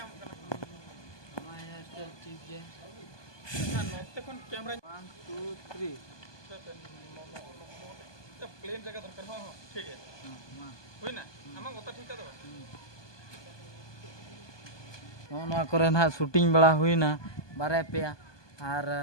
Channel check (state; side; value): late; right; 1.2 ms